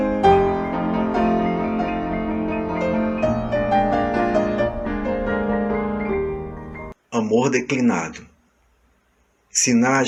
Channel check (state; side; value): identical; both; correlation 1.00